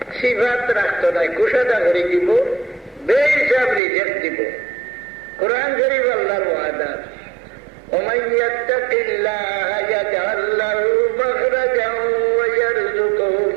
সিফাত রাখতো নাই, কুশাদা করে দিব, বেহিসাব রিজেক্ট দিব। কোরআন শরীফ আল্লাহর ওয়াদা, ومن يتق الله يجعل له مخرجا ويرزقه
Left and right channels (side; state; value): left; drops out; at 3.8 s